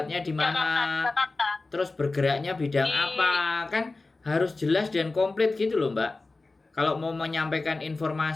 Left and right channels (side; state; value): right; quieter; 3.5 dB